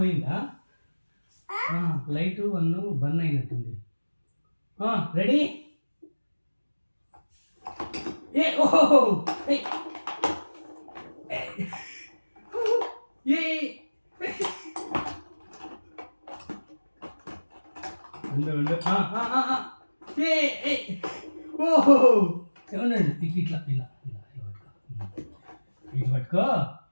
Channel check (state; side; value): inverted; both; correlation -1.00